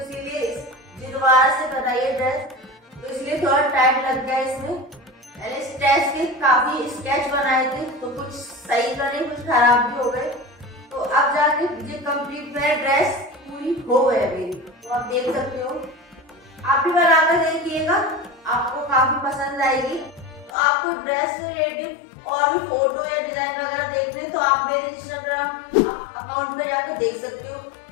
दोबारा से बनाई ड्रेस, तो इसलिए थोड़ा टाइम लग गया इसमें। मैंने स्टेच के काफी स्केच बनाए थे, तो कुछ सही बने, कुछ खराब भी हो गए। तो अब जाके ये कंप्लीट मेरा ड्रेस पूरी हो गई मेरी, तो आप देख सकते हो। आप भी बनाकर देखिएगा, आपको काफी पसंद आएगी। तो आपको ड्रेस से रिलेटेड और भी फोटो या डिजाइन वगैरह देखने, तो आप मेरे इंस्टाग्राम अकाउंट पे जाकर देख सकते हो।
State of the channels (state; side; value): drops out; right; at 20.5 s